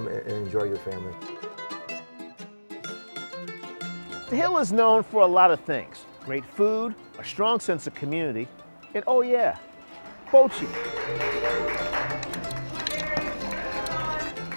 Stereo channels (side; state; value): both; inverted; correlation -1.00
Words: and enjoy your family. The Hill is known for a lot of things. Great food, a strong sense of community, and oh yeah, Bochi.